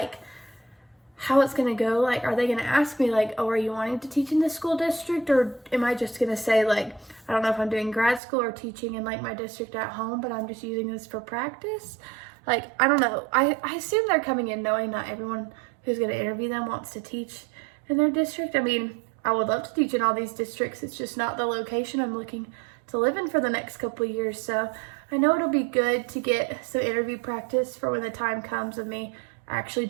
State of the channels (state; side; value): drops out; left; at 8.2 s